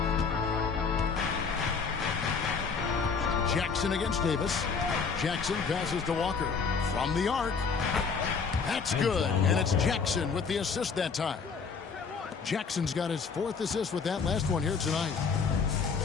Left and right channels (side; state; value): right; quieter; 5.4 dB